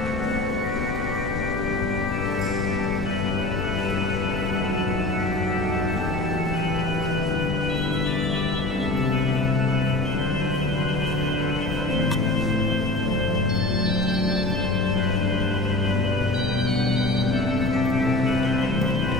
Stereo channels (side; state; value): left; noise; rumble, 6 dB below the sound